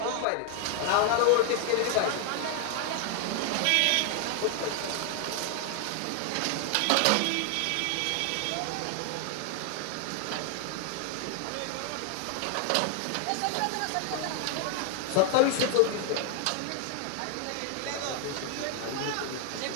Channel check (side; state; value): both; different; correlation 0.00